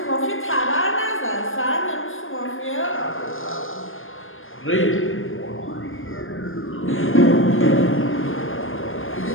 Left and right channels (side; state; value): right; late; 0.59 ms